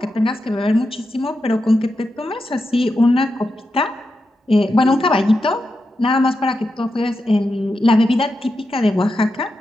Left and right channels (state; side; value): normal; both; correlation 0.88